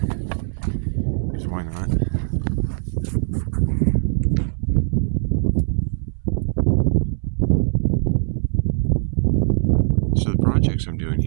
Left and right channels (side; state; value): left; silent; 65 dB below the other